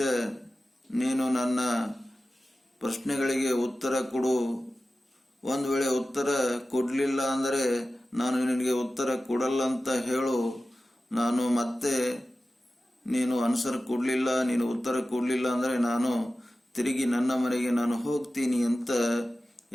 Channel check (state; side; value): normal; both; correlation 0.94